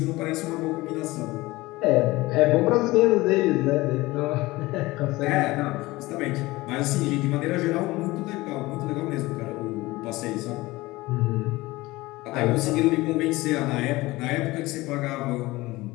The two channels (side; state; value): right; quieter; 20.1 dB